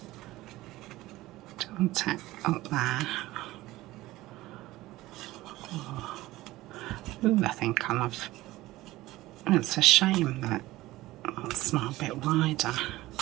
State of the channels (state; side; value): quieter; left; 17.7 dB